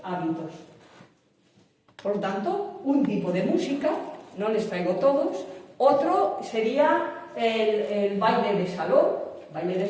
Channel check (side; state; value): both; identical; correlation 1.00